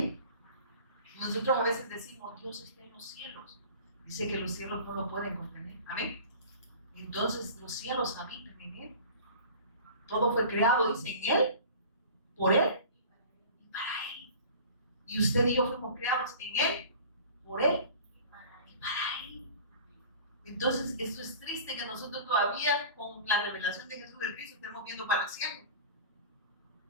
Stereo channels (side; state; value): both; inverted; correlation -0.40